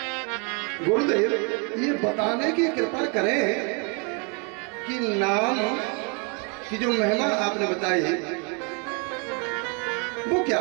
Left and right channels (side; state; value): left; quieter; 34.9 dB